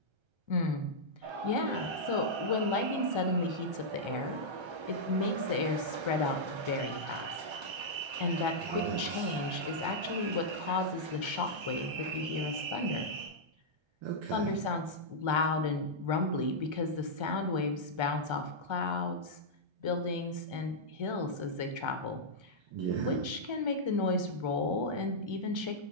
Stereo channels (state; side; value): late; left; 1.3 ms